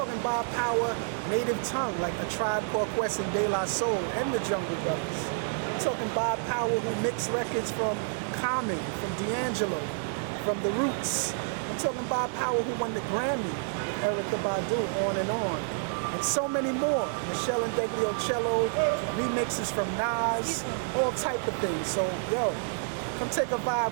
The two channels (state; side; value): silent; left; digital silence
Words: Bob Power, Native Tongue, like A Tribe Called Quest and De La Soul, and the Jungle Brothers. I'm talking Bob Power, who mixed records from Common, from D'Angelo, from The Roots. I'm talking Bob Power, who won the Grammy with Erykah Badu, on and on. And so many more. Michelle and Degliocello, remixes from Nas, all type of things. So, yo, come take a